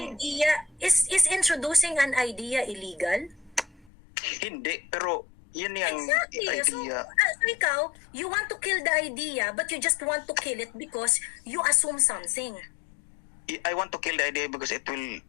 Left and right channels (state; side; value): drops out; right; at 3.9 s